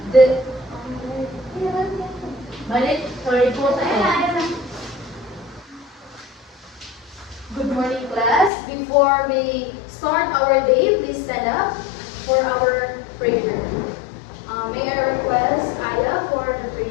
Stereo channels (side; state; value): right; drops out; at 8.5 s